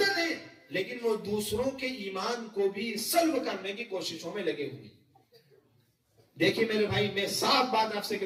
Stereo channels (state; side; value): identical; both; correlation 1.00